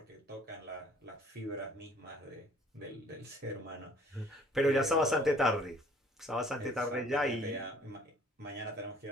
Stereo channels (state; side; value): normal; both; correlation 0.56